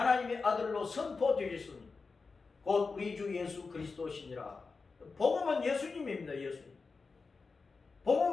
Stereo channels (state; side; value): quieter; right; 4.4 dB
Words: 아들로 선포되셨으니 곧 우리 주 예수 그리스도시니라. 복음은 예수님입니다. 예수님.